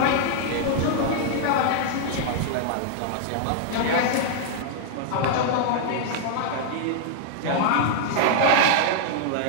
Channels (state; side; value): different; both; correlation -0.01